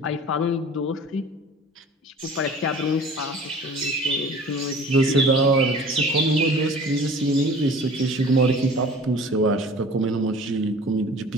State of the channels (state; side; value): normal; both; correlation 0.45